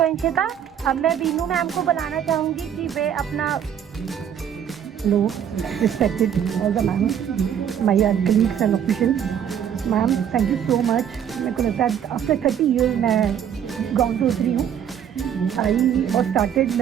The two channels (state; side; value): quieter; left; 8.9 dB